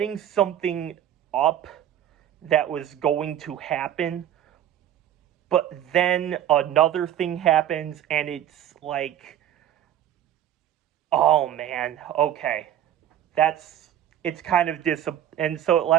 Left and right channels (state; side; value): quieter; left; 11.1 dB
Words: something up that was going to happen, but then another thing happens, and it's like, oh man, okay, it's kind of and so it